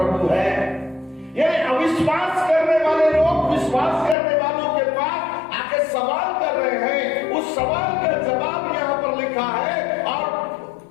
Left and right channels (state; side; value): drops out; right; at 4.2 s